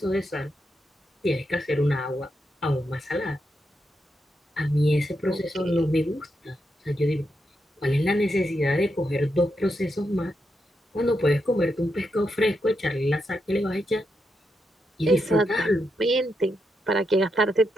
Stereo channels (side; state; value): both; normal; correlation 0.83